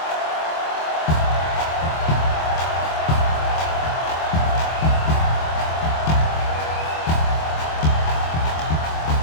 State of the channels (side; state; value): right; late; 25 ms